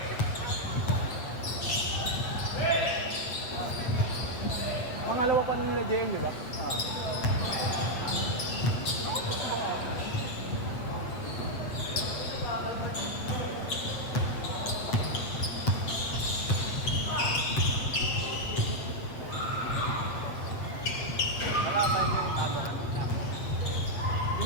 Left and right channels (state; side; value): late; right; 7.9 ms